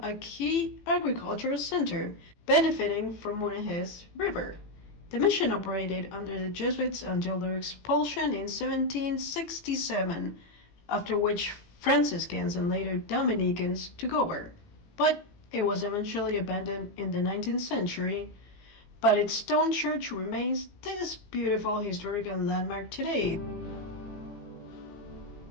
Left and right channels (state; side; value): late; right; 18 ms